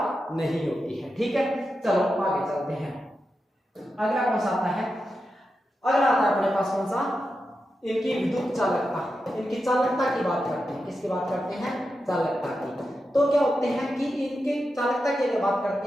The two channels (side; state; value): both; normal; correlation 0.89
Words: नहीं होती है, ठीक है। चलो आगे चलते हैं। अगला कौन सा आता है? अगला आता है अपने पास कौन सा? इनकी विद्युत चालकता, इनकी चालकता की बात करते हैं। किसकी बात करते हैं? चालकता की। तो क्या होते हैं कि इनकी चालकता की अगर बात